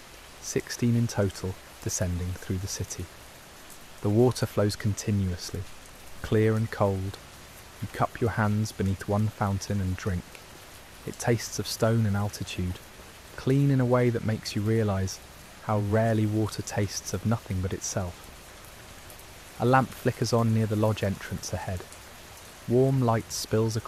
16 in total, descending through the city. The water flows continuously, clear and cold. You cup your hands beneath one fountain and drink. It tastes of stone and altitude, clean in a way that makes you realise how rarely water tastes of nothing but itself. A lamp flickers on near the lodge entrance ahead. Warm light spills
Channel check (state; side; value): identical; both; correlation 1.00